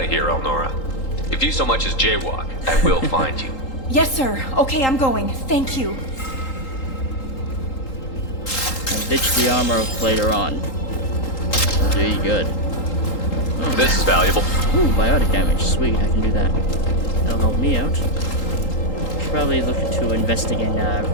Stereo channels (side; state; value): right; late; 3.8 ms